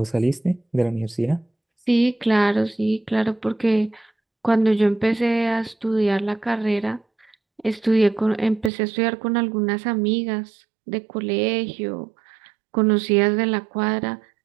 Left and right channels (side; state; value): left; drops out; at 8.7 s